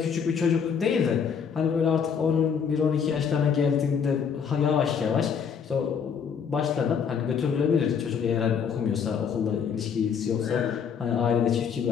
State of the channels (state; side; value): quieter; right; 6.9 dB